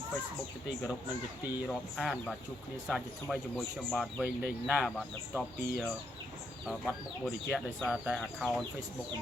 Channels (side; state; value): both; normal; correlation 0.77